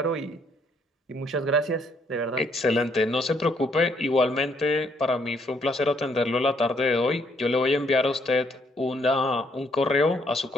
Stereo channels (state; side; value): normal; both; correlation 0.70